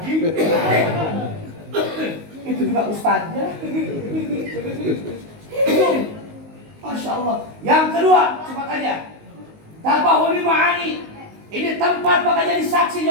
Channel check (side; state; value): left; late; 19 ms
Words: Itu juga ustadznya. Itu, Masya Allah. Yang kedua, cepat aja. Tabahuli ma'ani. Ini tempat bakal jadi saksi